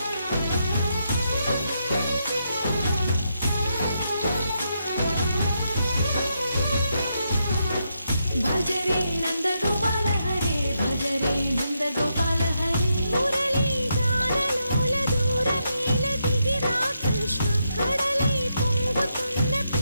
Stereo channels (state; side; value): inverted; both; correlation -0.81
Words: భజరే నందగోపాల హరే భజరే నందగోపాల హరే మురళీ గానలోల దూరమేల దిగిరా కృష్ణ కడలై పొంగుతున్న